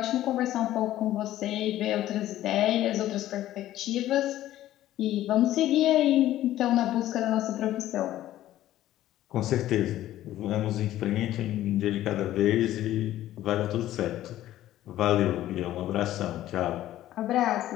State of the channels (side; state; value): right; quieter; 13.7 dB